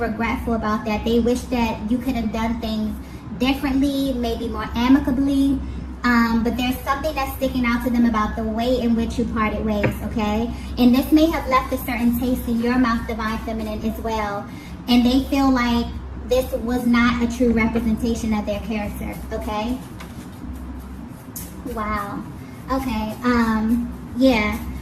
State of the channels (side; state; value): both; identical; correlation 1.00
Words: about that. They wish that you could have done things differently, maybe more amicably. But there's something that's sticking out to them about the way in which you parted ways, okay? And this may have left a certain taste in your mouth, divine feminine, as well. And they feel like this was not a true representation of their character, okay? Wow. Okay, yeah.